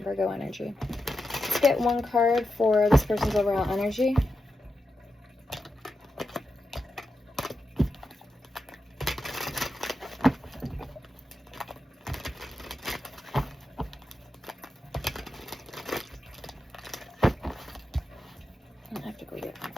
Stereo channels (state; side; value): normal; both; correlation 0.88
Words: energy. Let's get one card for this person's overall energy. I have to go get my